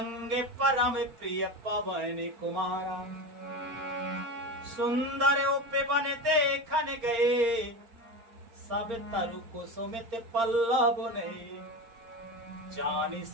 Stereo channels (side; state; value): left; late; 4.4 ms